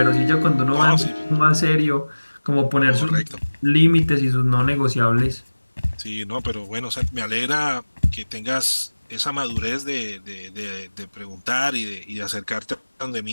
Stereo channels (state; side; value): inverted; both; correlation -1.00